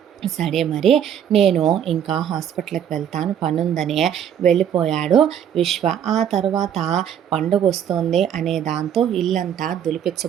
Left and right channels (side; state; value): left; quieter; 9.3 dB